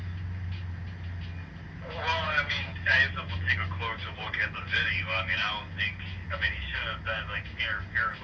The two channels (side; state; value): both; identical; correlation 1.00